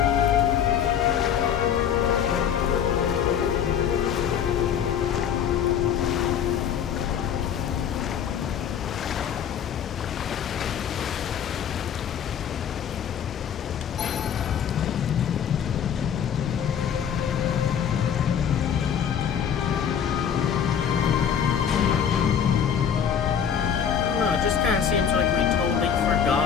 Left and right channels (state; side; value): quieter; right; 8.3 dB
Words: It just kind of seems like we totally